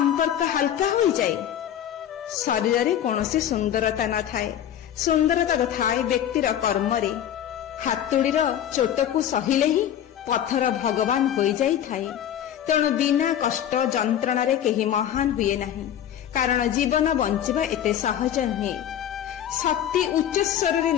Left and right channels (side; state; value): right; quieter; 10.4 dB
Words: ହାଲକା ହୋଇଯାଏ। ଶରୀରରେ କୌଣସି ସୁନ୍ଦରତା ନଥାଏ, ସୁନ୍ଦରତା ଥାଏ ବ୍ୟକ୍ତିର କର୍ମରେ। ହାତୁଡ଼ିର ଚୋଟକୁ ସହିଲେ ହିଁ ପଥର ଭଗବାନ ହୋଇଯାଇଥାଏ। ତେଣୁ ବିନା କଷ୍ଟ ଯନ୍ତ୍ରଣାରେ କେହି ମହାନ ହୁଏ ନାହିଁ, କାରଣ ଜୀବନ ବଞ୍ଚିବା ଏତେ ସହଜ ନୁହେଁ। ଶକ୍ତି ଉଚ୍ଚସ୍ୱରରେ